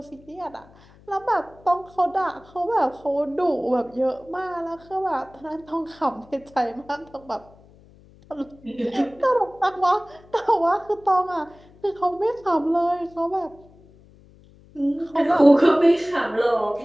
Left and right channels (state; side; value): noise; left; hum, 26 dB below the sound